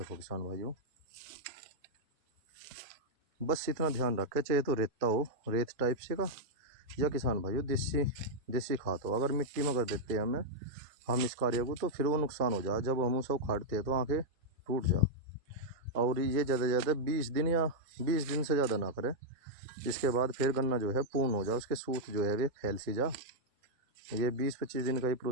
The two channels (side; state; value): left; late; 1.8 ms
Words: किसान भाइयों, बस इतना ध्यान रखें, चाहे तो रेता हो, रेत टाइप से का, या किसान भाइयों देसी खाद हो। अगर मिट्टी में कर देते हैं हम इस कार्य को, तो फिर वो नुकसान हो जाए। जब हम उसे उखाड़ते हैं तो आँखें टूट जा। और ये ज़्यादा से ज़्यादा 20 दिन या 20 दिन से ज़्यादा ना करें। इसके बाद फिर गन्ना जो है पूर्ण हो जाए, उसके सूत जो है वे फैल सी जा। ये 20-25 दिन का ही